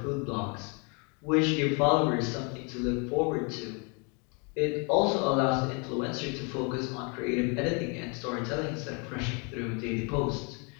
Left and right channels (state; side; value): quieter; right; 34.0 dB